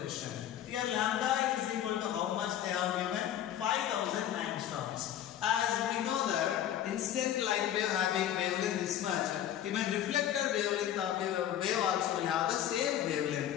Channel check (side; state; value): right; quieter; 11.1 dB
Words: Here lambda is equal to how much they have given? 5000 angstroms. As we know that incident light wave having wavelength this much, even reflected wavelength of wave also will have the same